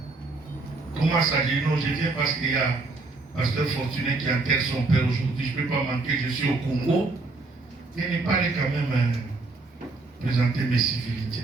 comment ça? Je dis non, je viens parce qu'il y a Pasteur Fortuné qui enterre son père aujourd'hui, je ne peux pas manquer, je suis au Congo. Il n'est pas allé quand même présenter mes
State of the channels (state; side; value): quieter; left; 3.5 dB